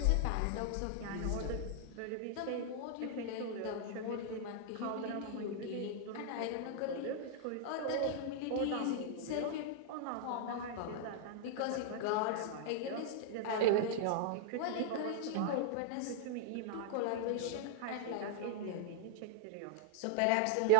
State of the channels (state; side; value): different; both; correlation -0.01